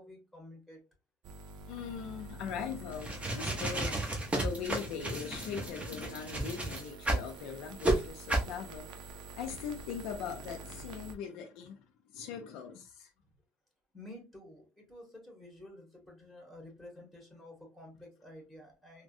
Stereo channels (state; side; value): normal; both; correlation 0.58